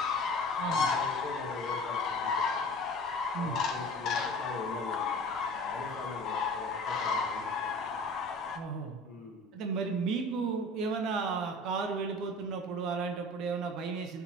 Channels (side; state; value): both; normal; correlation 0.41